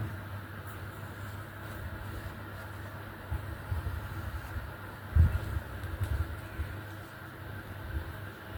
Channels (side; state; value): both; identical; correlation 1.00